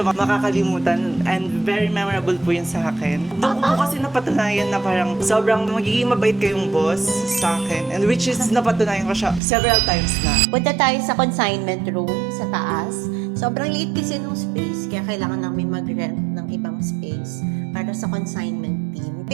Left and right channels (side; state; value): left; drops out; at 9.4 s